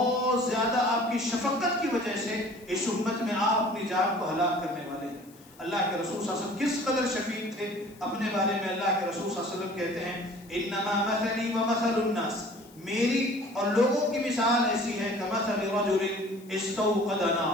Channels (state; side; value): noise; left; hiss, 26 dB below the sound